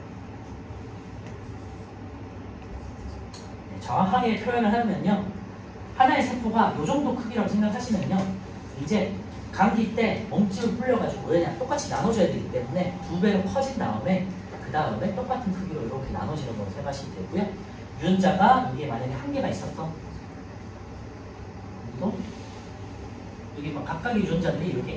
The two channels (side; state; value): both; identical; correlation 1.00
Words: 정확하게 표현을 하면요. 하나의 세포가 이 정도 크기라고 생각하시면요. 이제 감기 때 몸집을 불려가지고 왜냐 똑같이 나눠줘야 되기 때문에 2배로 커진 다음에 그 다음에 똑같은 크기로 이렇게 나눠지는 걸로 생각하시면 되고요. 유전자가 이게 만약에 한 개가 있었어. 그리고 여기 막 각각의 유전자들이 이렇게